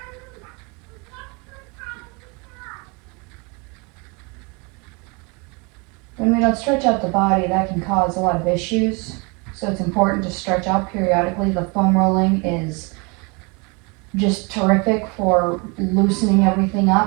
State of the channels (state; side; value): quieter; left; 30.3 dB